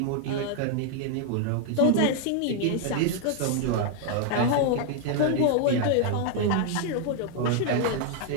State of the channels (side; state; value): both; different; correlation 0.00